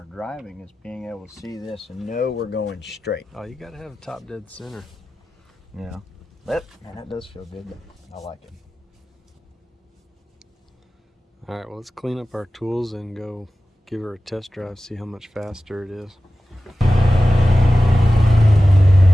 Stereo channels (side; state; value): both; normal; correlation 0.95